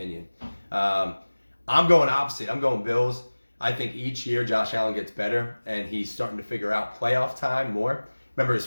I'm going opposite. I'm going Bills. I think each year Josh Allen gets better, and he's starting to figure out playoff time more. Remember his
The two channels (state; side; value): inverted; both; correlation -1.00